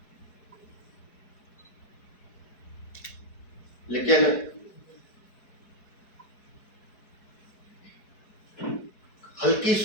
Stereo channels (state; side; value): late; right; 4.6 ms